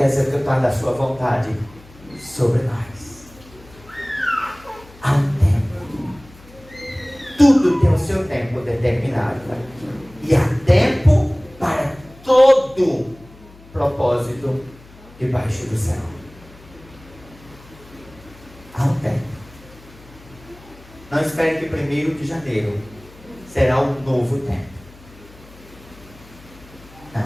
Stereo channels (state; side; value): noise; left; hum, 23 dB below the sound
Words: executado a sua vontade sobre nós. Há um tempo. Tudo tem o seu tempo determinado. E há tempo para todo propósito debaixo do céu. Há um tempo. Não espere que 1º de janeiro será um novo tempo.